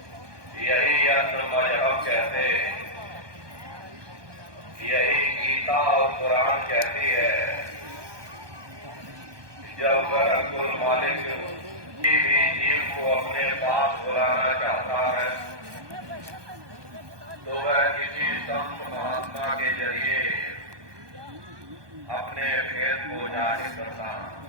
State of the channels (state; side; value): late; left; 1.2 ms